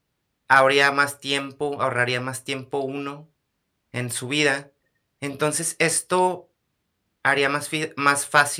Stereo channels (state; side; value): identical; both; correlation 1.00